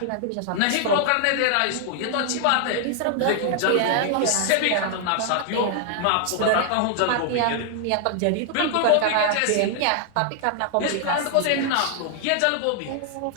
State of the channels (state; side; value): different; both; correlation 0.00